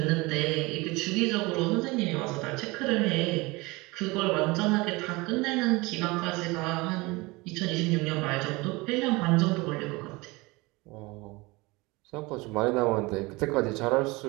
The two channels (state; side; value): quieter; left; 23.6 dB